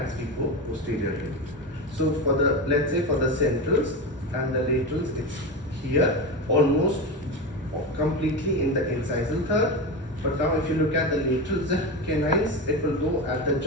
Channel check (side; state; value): both; normal; correlation 0.20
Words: we go posteriorly. So for the, let's say for the centrals and the laterals, it's here, almost completely in the incisal third. But now if you look at the laterals, the canines, it will go at the